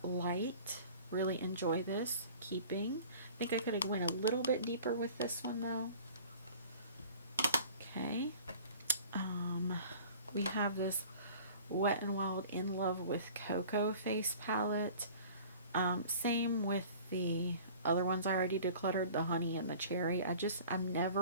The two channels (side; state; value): both; inverted; correlation -0.45